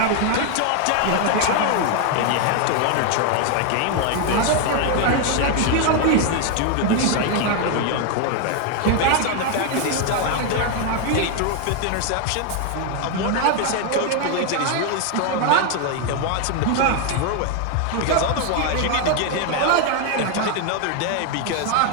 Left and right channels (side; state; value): both; different; correlation 0.01